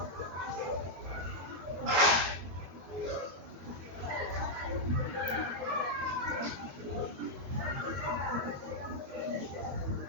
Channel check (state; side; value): late; left; 22 ms